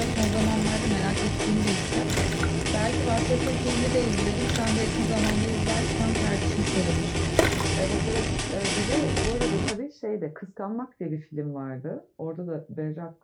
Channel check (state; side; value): identical; both; correlation 1.00